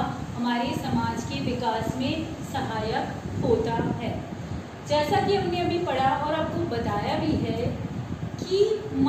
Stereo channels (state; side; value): identical; both; correlation 1.00